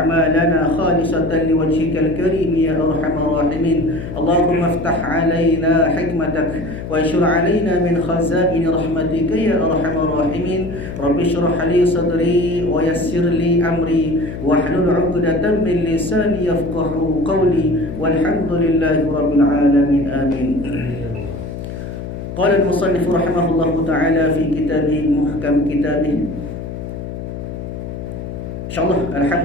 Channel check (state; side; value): noise; left; hum, 8 dB below the sound